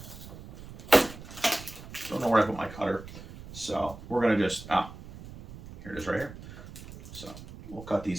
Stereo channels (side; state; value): right; noise; rumble, 14 dB below the sound